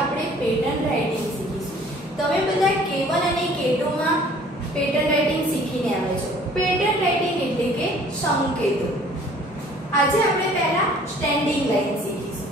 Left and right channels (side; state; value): both; normal; correlation 0.54